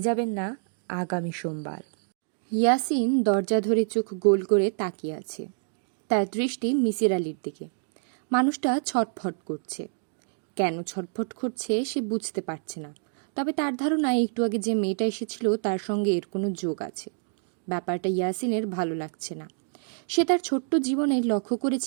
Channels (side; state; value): left; silent; digital silence